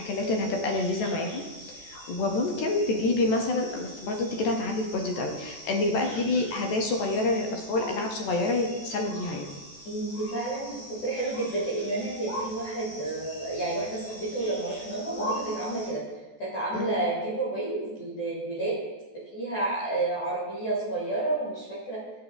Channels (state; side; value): late; right; 14 ms